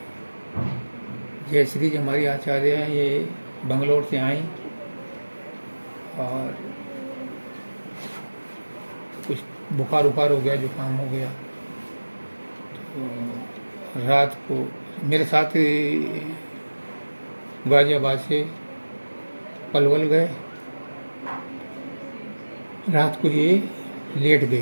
जय श्री जी हमारी आचार्य हैं, ये बंगलोर से आई और कुछ बुखार उखार हो गया, जुकाम हो गया, तो रात को मेरे साथ गाजियाबाद से पलवल गए। रात को ये लेट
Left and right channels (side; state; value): both; inverted; correlation -1.00